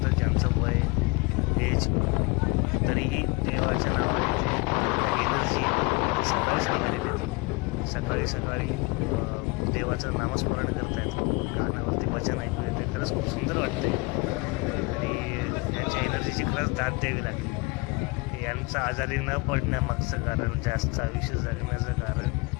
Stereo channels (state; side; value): quieter; right; 26.4 dB